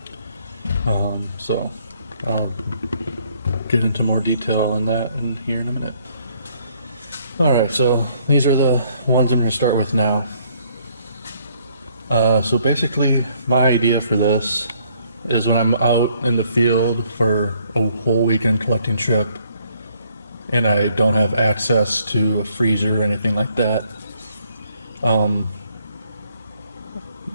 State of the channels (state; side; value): inverted; both; correlation -0.65